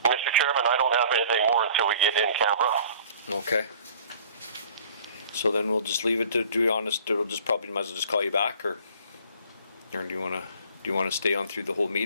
Mr. Chairman, I don't have anything more until we get in camera. Okay. So then we'll just leave it to be honest. It'll just probably might as well just call you back, or do you want to stay on through the whole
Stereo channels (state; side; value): inverted; both; correlation -0.50